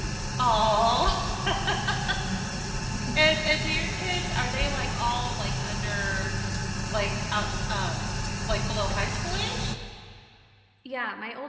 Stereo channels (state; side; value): identical; both; correlation 1.00